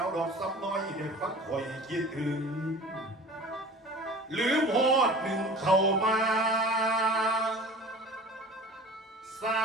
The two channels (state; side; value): normal; both; correlation 0.41